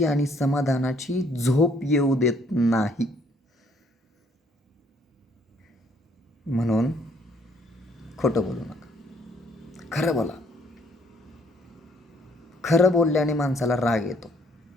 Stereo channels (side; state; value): both; normal; correlation 0.65